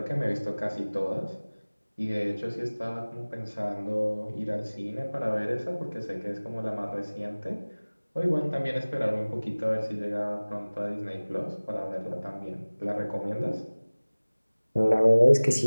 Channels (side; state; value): both; inverted; correlation -1.00